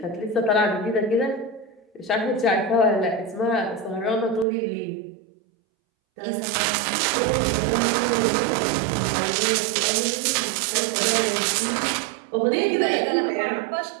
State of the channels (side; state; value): left; drops out; at 4.5 s